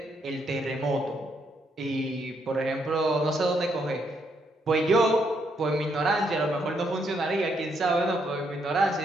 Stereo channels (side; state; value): both; normal; correlation 0.75